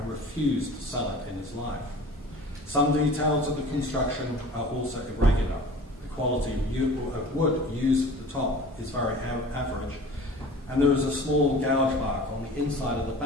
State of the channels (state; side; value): normal; both; correlation 0.42